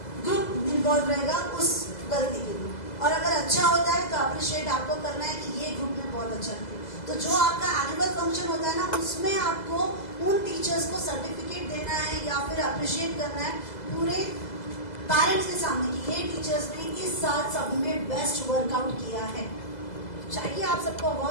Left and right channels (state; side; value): late; right; 2.0 ms